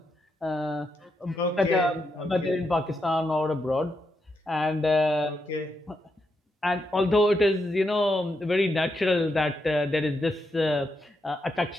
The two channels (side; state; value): both; normal; correlation 0.82